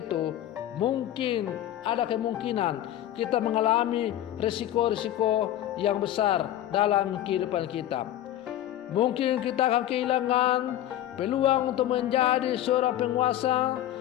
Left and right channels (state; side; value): quieter; right; 12.6 dB